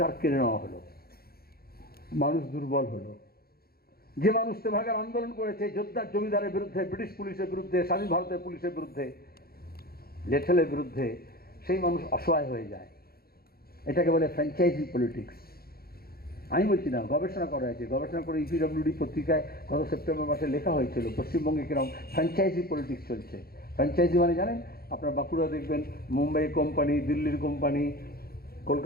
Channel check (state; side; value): late; right; 0.44 ms